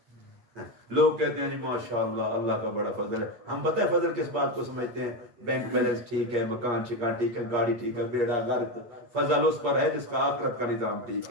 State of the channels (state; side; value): late; left; 8.5 ms